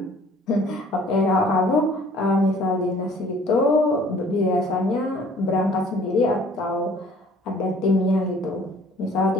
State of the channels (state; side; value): normal; both; correlation 0.54